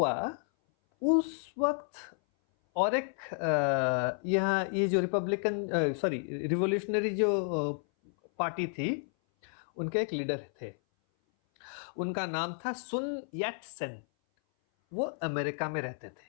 उस वक्त और एक यहाँ ये जो रिवोल्यूशनरी जो पार्टी थी, उनके एक लीडर थे, उनका नाम था सुन यट सेन। वो अमेरिका में रहते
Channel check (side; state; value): right; silent; 57 dB below the other